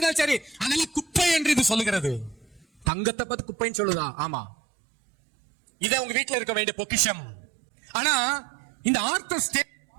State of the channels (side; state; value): left; drops out; at 2.9 s